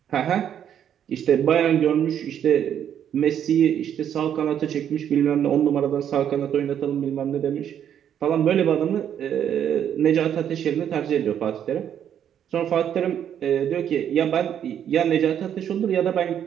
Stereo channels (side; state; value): left; quieter; 9.4 dB